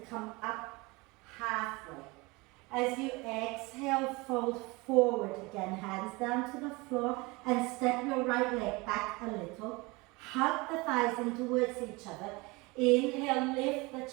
up halfway. As you exhale, fold forward again, hands down to the floor and step your right leg back a little. Hug the thighs in towards each other. Inhale, lift the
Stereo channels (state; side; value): quieter; left; 24.8 dB